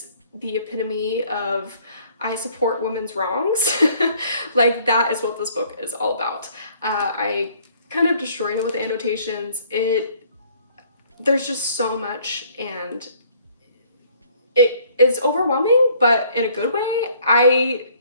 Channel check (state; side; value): inverted; both; correlation -0.60